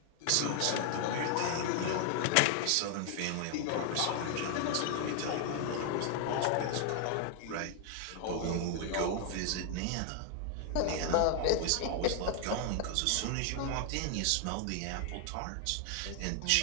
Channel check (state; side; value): different; both; correlation 0.00